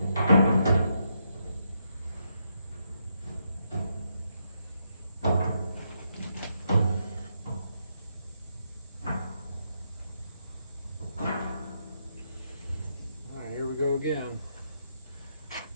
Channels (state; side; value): inverted; both; correlation -0.79